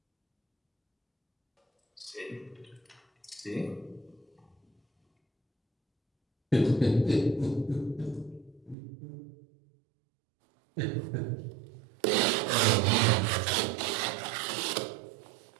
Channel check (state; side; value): drops out; left; at 8.8 s